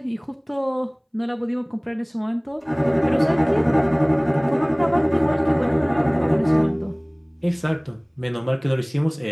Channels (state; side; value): identical; both; correlation 1.00